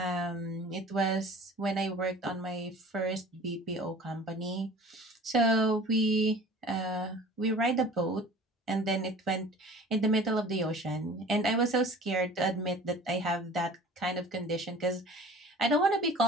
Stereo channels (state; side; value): normal; both; correlation 0.44